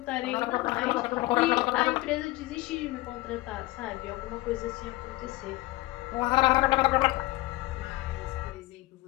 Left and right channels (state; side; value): quieter; right; 19.2 dB